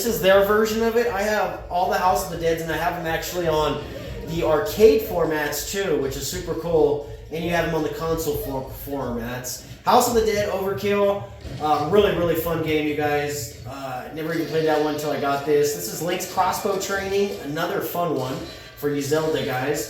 is their version of it. I have all the House of the Deads, and I have them actually on the arcade formats too, which is super cool. And you have them on the console formats. House of the Dead Overkill. Really, really fun game, you guys. Never even played that one until I got this. This is Link's Crossbow Training. Another fun one for you Zelda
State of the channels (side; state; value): both; identical; correlation 1.00